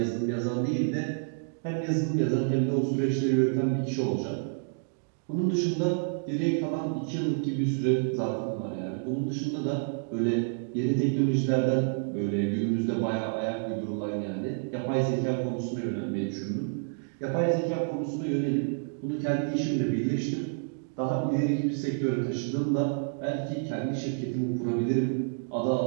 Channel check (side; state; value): left; silent; digital silence